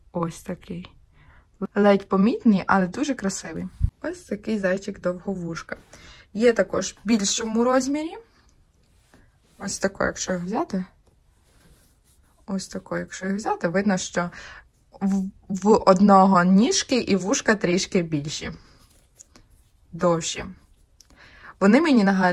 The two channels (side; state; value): both; identical; correlation 1.00